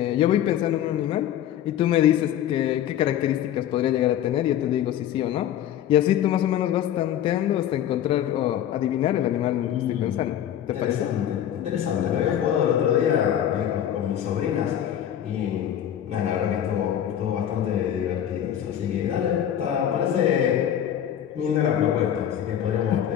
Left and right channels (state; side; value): quieter; right; 10.6 dB